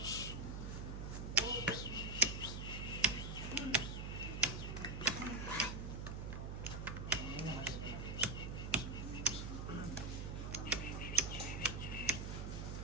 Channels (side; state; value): right; noise; hum, 5 dB below the sound